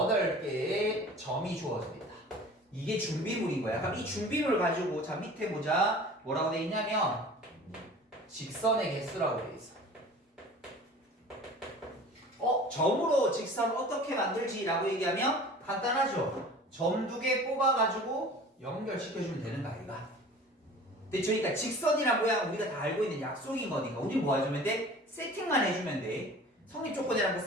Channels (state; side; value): normal; both; correlation 0.43